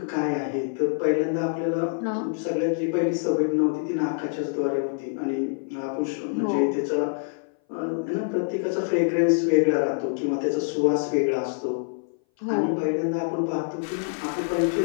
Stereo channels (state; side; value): silent; right; 59 dB below the other